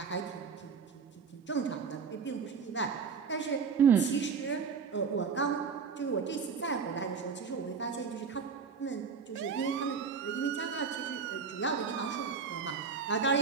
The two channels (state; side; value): quieter; left; 5.8 dB